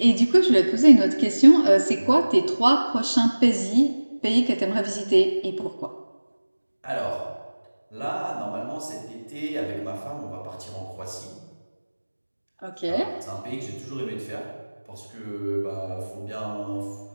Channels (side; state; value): both; inverted; correlation -1.00